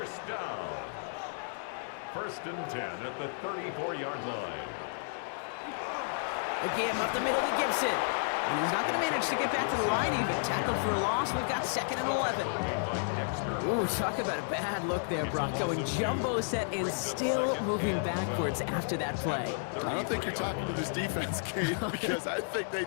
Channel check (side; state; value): right; silent; digital silence